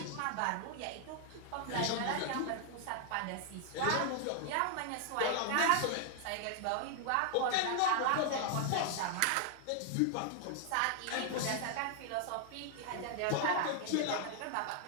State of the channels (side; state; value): both; different; correlation 0.00